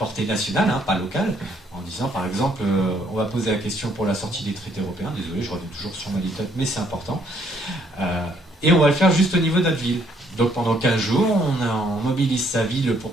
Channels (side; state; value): both; normal; correlation 0.67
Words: nationale, pas locale, en disant par exemple on va poser la question pour la sortie des traités européens, désolé je reviens toujours sur ma litote mais c'est important, et on va le faire juste au niveau de notre ville. Donc pendant 15 jours on mobilise sa ville